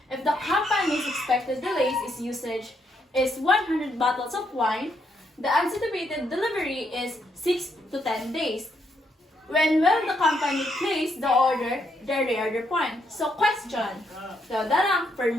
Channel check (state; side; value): normal; both; correlation 0.76